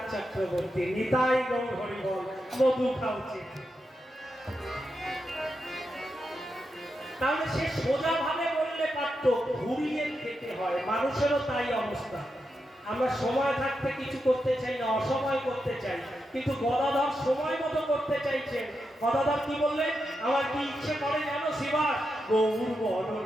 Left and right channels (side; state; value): both; normal; correlation 0.86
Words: চক্রবর্তী, নিতাই গৌর হরি বল, মধু খাওয়াচ্ছে। তাহলে সে সোজা ভাবে বললে পারত, ঘুরিয়ে খেতে হয়। মানুষেরও তাই অবস্থা, আমরা সময় থাকতে কিছু করতে চাই না, অসময় করতে চাই। কিন্তু গদাধর সময় মতো করতে চাইছেন। গদাধর কি বললেন? আমার কি ইচ্ছে করে জানো শিবা? গৌর বরণ